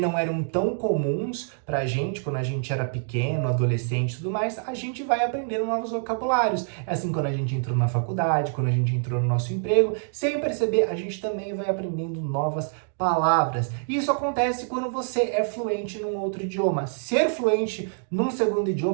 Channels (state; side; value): silent; left; 61 dB below the other